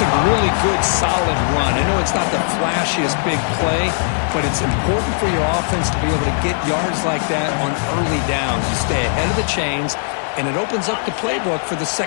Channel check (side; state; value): right; silent; digital silence